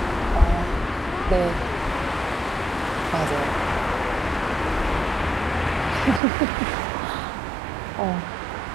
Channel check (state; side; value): drops out; left; at 6.2 s